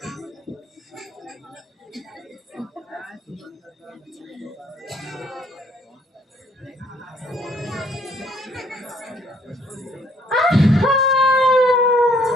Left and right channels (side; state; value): both; normal; correlation 0.64